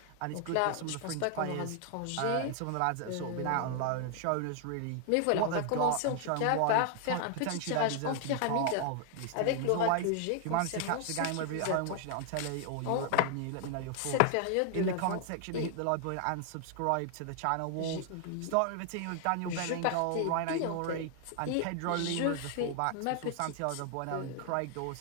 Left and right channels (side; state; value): both; different; correlation 0.00